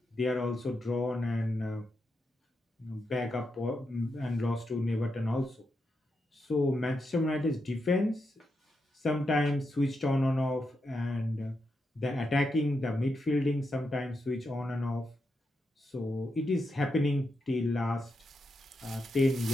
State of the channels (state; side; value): normal; both; correlation 0.85